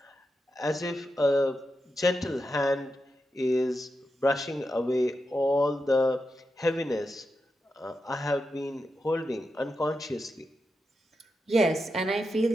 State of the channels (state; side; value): normal; both; correlation 0.88